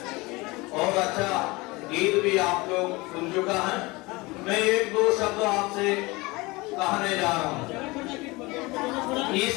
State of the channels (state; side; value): quieter; right; 23.4 dB